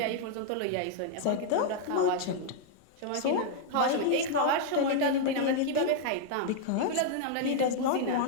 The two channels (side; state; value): both; different; correlation 0.00